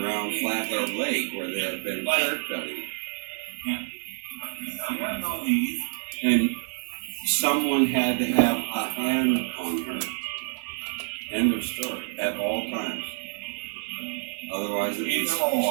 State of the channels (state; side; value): silent; left; digital silence